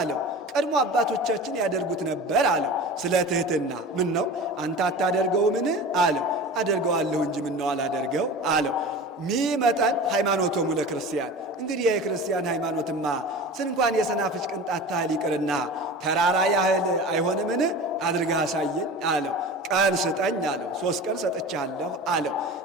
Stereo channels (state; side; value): normal; both; correlation 0.34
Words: ቀድሞ አባቶቻችን ያደርጉት ነበር አለው። ስለ ትሕትና ምን ነው አንተ አታደርገው ምን አለው። አደርገዋለሁ እንጂ ምን ነው አላደርገው አለው። ሚመጠን ሃይማኖቶሙ ለክርስቲያን። እንግዲህ የክርስቲያን ሃይማኖትማ ስንኳን የሰናፍጭ ቅንጣት ታህል ይቅርና ተራራ ያህል አይሆንምን? አድርገህ አሳየኝ አለው። ቀን ስጠኝ አለው። 3 ቀን ሰጥቻለሁ አለው።